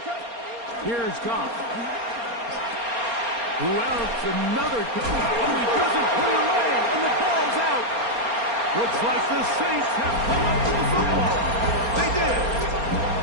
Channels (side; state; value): left; late; 4.3 ms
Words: Here's Goff. Who else? Another. Oh, he doesn't put it away, and the ball's out. Looks like the Saints have come up with the football. They did.